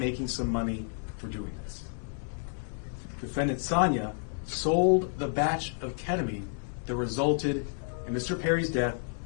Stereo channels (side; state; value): right; silent; 57 dB below the other